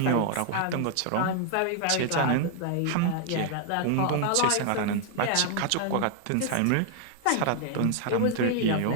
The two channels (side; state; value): both; different; correlation 0.00